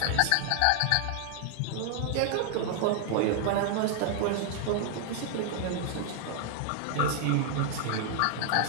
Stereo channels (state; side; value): different; both; correlation 0.00